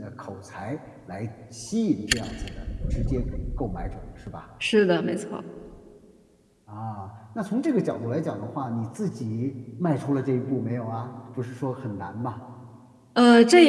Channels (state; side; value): identical; both; correlation 1.00